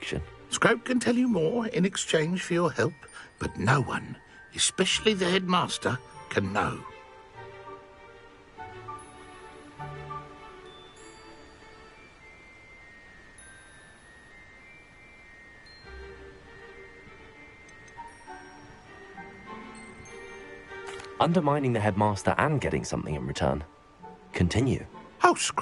Scrope can tell you more in exchange for your help, but no one, especially the headmaster, can know. Undermining the headmaster and getting something in return. Continue. Oh,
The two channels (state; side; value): identical; both; correlation 1.00